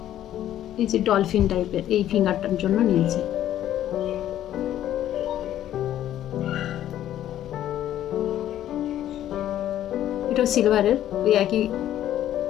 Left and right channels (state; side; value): quieter; right; 12.0 dB